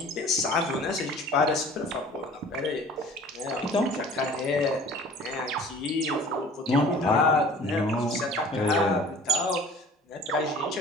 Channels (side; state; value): both; normal; correlation 0.47